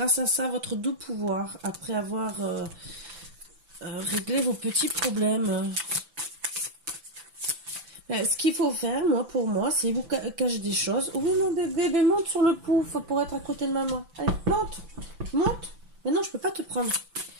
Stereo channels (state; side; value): late; left; 6.0 ms